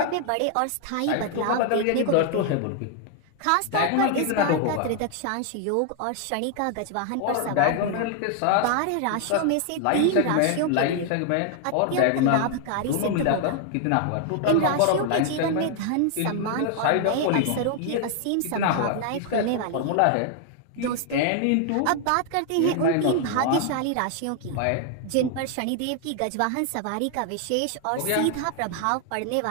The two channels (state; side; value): different; both; correlation 0.00